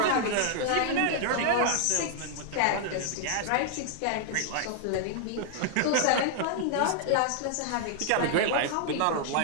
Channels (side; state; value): both; different; correlation -0.01